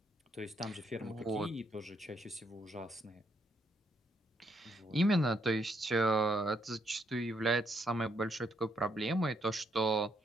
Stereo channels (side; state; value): both; normal; correlation 0.74